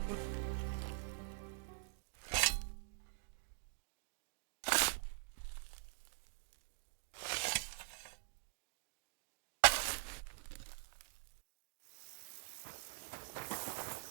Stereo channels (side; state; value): left; silent; digital silence